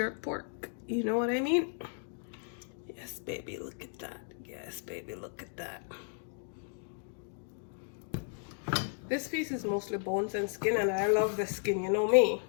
pork. You know what I mean? Yes, baby, look at that. Yes, baby, look at that. This piece is mostly bones and skin, and I love the skin, you know me.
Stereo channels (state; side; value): silent; right; 55 dB below the other